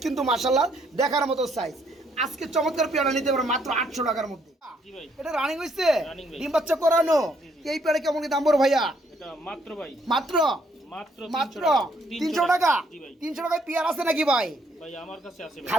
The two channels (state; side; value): normal; both; correlation 0.69